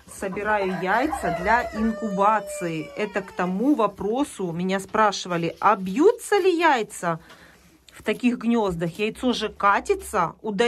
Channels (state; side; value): identical; both; correlation 1.00